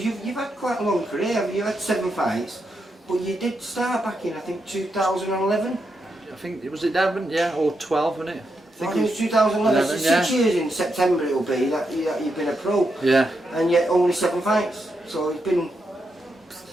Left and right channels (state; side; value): normal; both; correlation 0.83